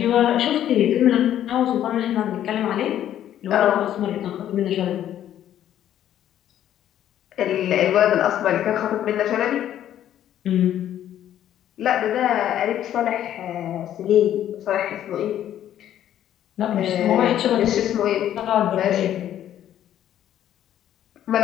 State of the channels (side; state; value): right; quieter; 11.2 dB